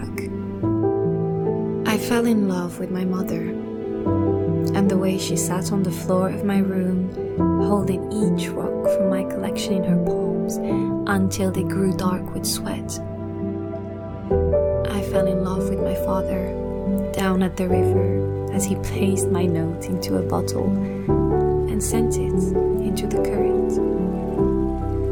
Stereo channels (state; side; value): identical; both; correlation 1.00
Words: I fell in love with my mother and the way she sat on the floor of my room, holding each rock from my collection in her palms until they grew dark with sweat. I fell in love with my father down at the river as he placed my note into a bottle and sent it into the current.